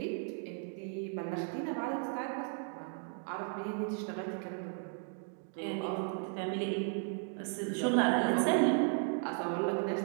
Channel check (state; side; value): silent; left; 54 dB below the other